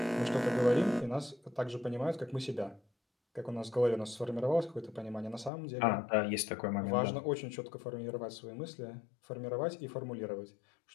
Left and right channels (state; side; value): drops out; right; at 5.5 s